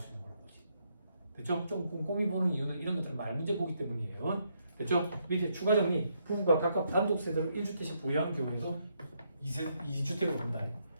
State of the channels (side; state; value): both; inverted; correlation -0.76